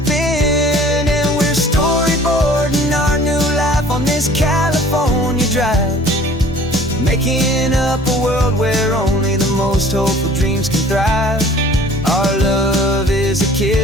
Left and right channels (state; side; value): normal; both; correlation 0.50